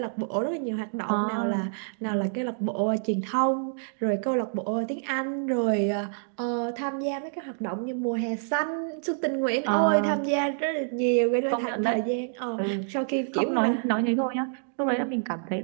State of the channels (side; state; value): left; silent; digital silence